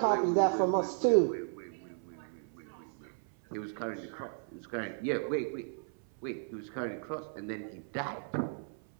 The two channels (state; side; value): silent; left; 55 dB below the other